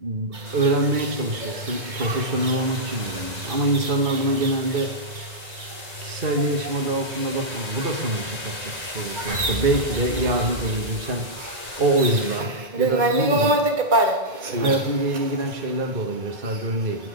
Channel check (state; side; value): late; left; 2.2 ms